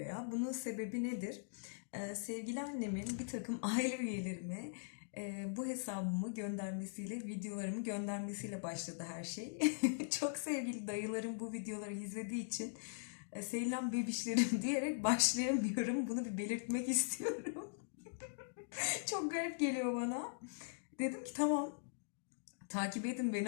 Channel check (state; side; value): silent; right; digital silence